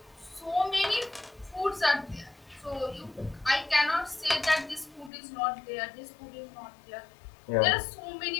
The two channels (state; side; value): drops out; right; at 5.1 s